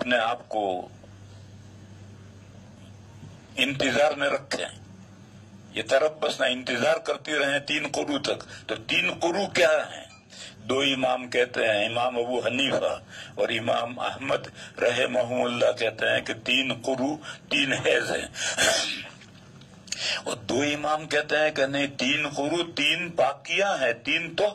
آپ کو انتظار میں رکھیں، یہ تربصن انتظار کرتی رہیں 3 قروء تک. تو 3 قروء کیا ہیں؟ 2 امام کہتے ہیں، امام ابو حنیفہ اور امام احمد رحمہم اللہ کہتے ہیں کہ 3 قروء 3 حیض ہیں، اور 2 امام کہتے ہیں کہ نہیں، 3 قروء 3 پاکیاں ہیں، 3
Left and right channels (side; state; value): both; identical; correlation 1.00